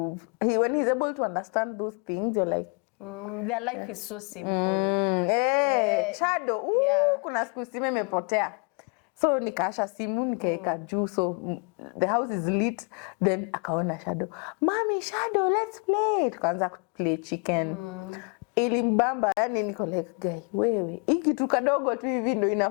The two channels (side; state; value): right; quieter; 35.5 dB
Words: when he's able to understand those things, you're like, their life is so simple. Shadow, kuna siku simu imepotea. So nikaasha simu nikaeka juu, so the house is lit. Then akaona Shadow, Mommy, Shadow, let's play. Tukaanza play chicken. Ilimbamba, yani niko like, guy, wewe hii kitu kadogo tu hivi ndo